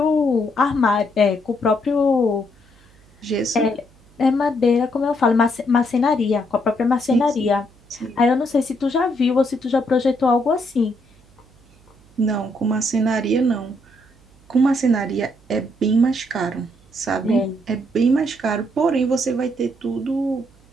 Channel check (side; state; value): right; noise; hum, 29 dB below the sound